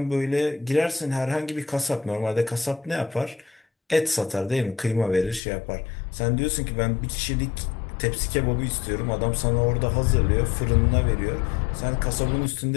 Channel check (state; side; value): drops out; right; at 5.4 s